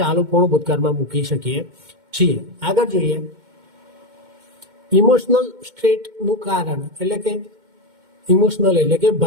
ચાલુ પૂર્ણ ભૂતકાળમાં મૂકી શકીએ છીએ. આગળ જોઈએ ઇમોશનલ સ્ટેટનું કારણ, એટલે કે ઇમોશનલ એટલે કે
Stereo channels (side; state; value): left; late; 2.1 ms